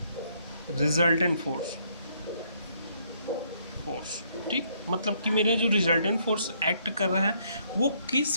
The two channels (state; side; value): inverted; both; correlation -0.69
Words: resultant force, ठीक। मतलब कि मेरा जो रिजल्टेंट फोर्स एक्ट कर रहा है वो